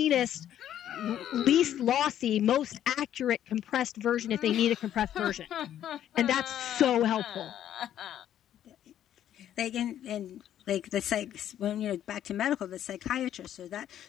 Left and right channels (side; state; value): right; quieter; 10.9 dB